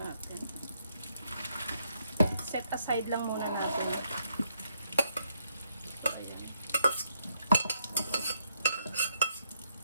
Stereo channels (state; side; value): inverted; both; correlation -0.74